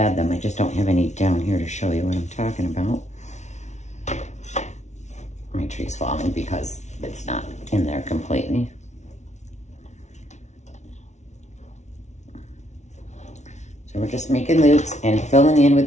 them. I just don't have any down here to show you what I'm talking about. My tree's falling because it's not in there completely. So we're just making loops and filling in with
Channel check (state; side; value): late; right; 0.33 ms